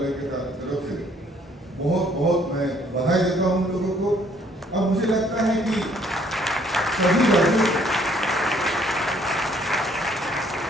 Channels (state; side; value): normal; both; correlation 0.63